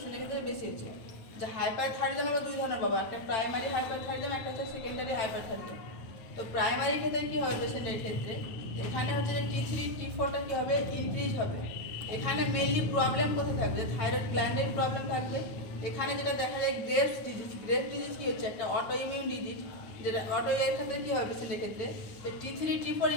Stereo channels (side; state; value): right; late; 9.4 ms